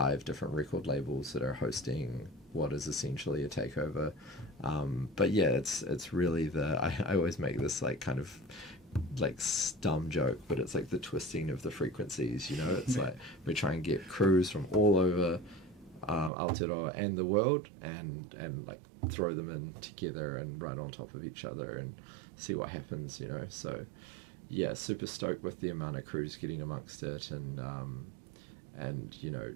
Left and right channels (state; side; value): drops out; left; at 16.3 s